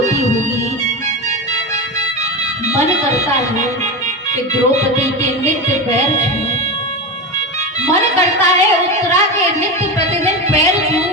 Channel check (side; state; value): both; normal; correlation 0.20